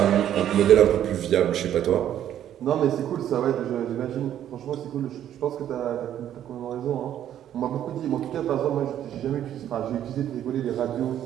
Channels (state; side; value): quieter; left; 10.9 dB